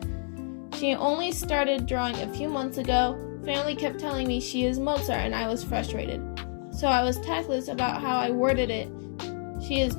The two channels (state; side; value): silent; right; 59 dB below the other